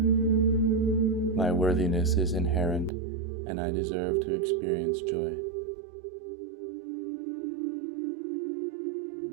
My worthiness is inherent, and I deserve to experience joy.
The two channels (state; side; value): drops out; left; at 2.9 s